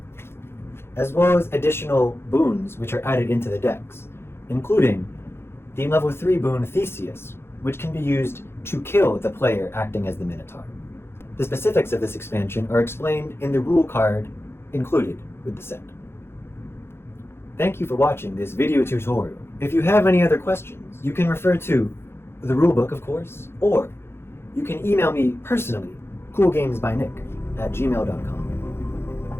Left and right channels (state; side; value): late; right; 0.12 ms